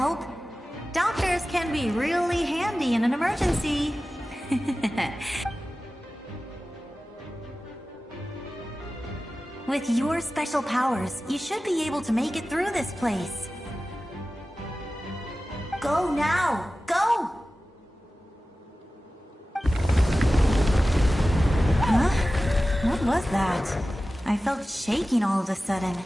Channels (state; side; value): normal; both; correlation 0.95